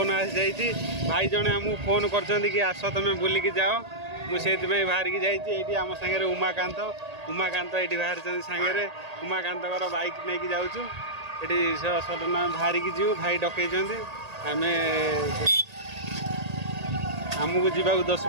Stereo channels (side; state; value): left; late; 1.8 ms